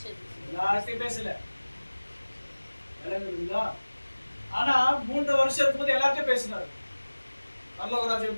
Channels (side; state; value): both; inverted; correlation -1.00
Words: யார்கிட்ட பேசல. ஆனா 3 வருஷம் இருக்கும்போது எல்லார்ட்டும் பேசினாரு. பரலோக ராஜ்யம்